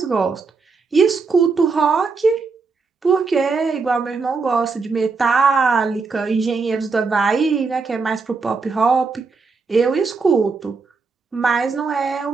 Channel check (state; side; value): quieter; left; 4.5 dB